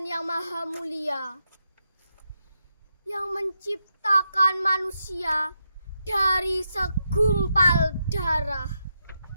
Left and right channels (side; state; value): both; inverted; correlation -0.83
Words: yang Maha Mulia, yang menciptakan manusia dari segumpal darah,